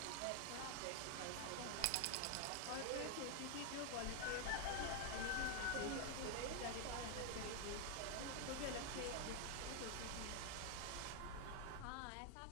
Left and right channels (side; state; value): both; different; correlation 0.00